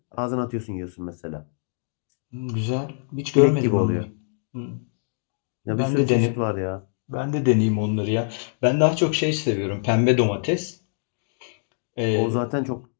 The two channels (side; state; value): right; silent; digital silence